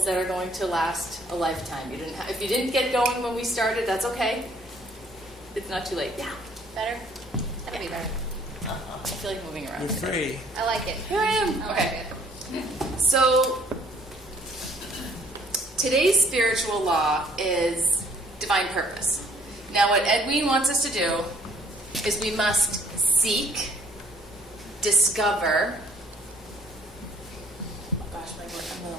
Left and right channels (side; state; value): both; normal; correlation 0.61